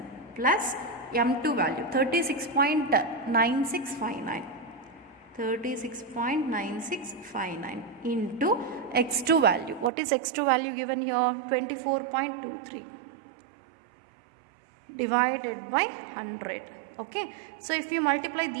plus m2 value 36.9659 into x2 value. What is x2 value given here? 24.23 divided by 100. Okay, so if you multiply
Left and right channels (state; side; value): drops out; left; at 9.9 s